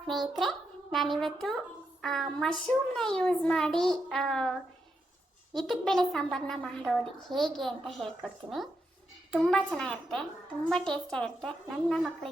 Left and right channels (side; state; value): both; normal; correlation 0.83